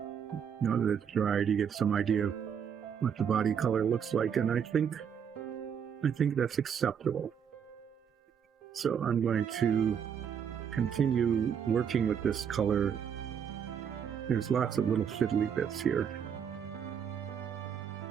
that it's dried, you get some idea of what the body color looks like, and I think that's acceptable. So I'm going to continue working with this color. There's lots of little fiddly bits here.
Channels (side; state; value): left; quieter; 7.7 dB